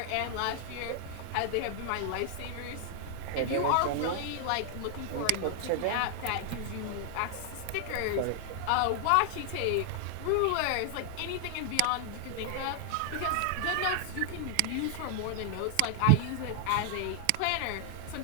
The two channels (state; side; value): different; both; correlation 0.00